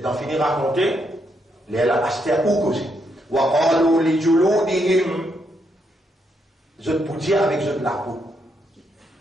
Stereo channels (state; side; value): normal; both; correlation 0.78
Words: d'en finir raconter, les acheter ou causé. وقالوا لجلودهم je peux dire avec je de la peau